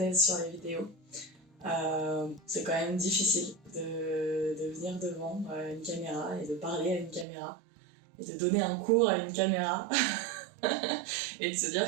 sur les vidéos. C'est quand même difficile de venir devant une caméra et de parler à une caméra et de donner un cours à une caméra et de se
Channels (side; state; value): left; drops out; at 7.2 s